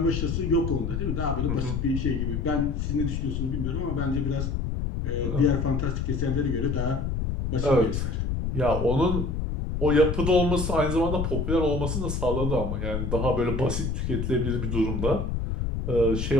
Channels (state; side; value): noise; left; rumble, 1 dB below the sound